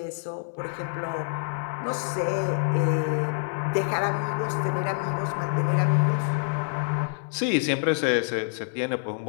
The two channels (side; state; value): right; silent; 60 dB below the other